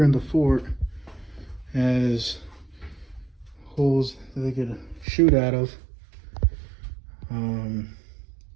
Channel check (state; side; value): drops out; left; at 5.1 s